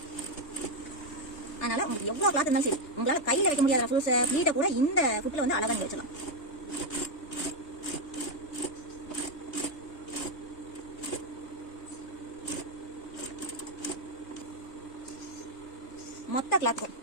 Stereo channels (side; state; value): right; late; 3.2 ms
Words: அதனால உங்களுக்கு எவ்வளவு கிளாத் இருந்தாலும் சரி, உங்களால கையில வைக்க முடியாத ரஃப்ஸ் ஃப்ளீட்டை கூட இந்த ஃபுட்ல வந்து அழகா நீங்க வச்சலாம். மொத்த கிளாத்துக்கும்